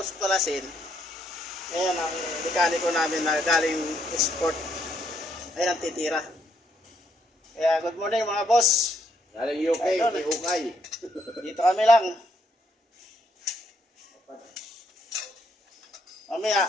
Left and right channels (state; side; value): normal; both; correlation 0.73